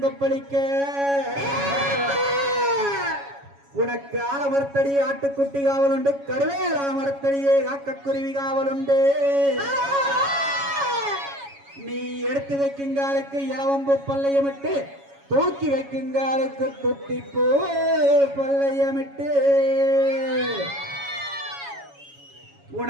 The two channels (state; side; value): late; left; 7.2 ms